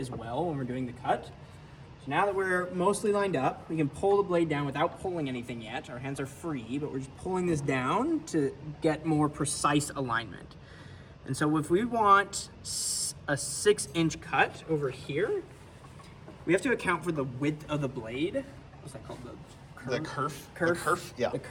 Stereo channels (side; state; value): both; identical; correlation 1.00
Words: well when we're doing the cut. So now that we're mostly lined up, we can pull the blade down without pulling anything yet. Our hands are free, but we're just pulling this down to get more precise alignment. And so if we want a 6-inch cut over here, we have to account for the width of the blade. What's that called? The kerf? Yeah. The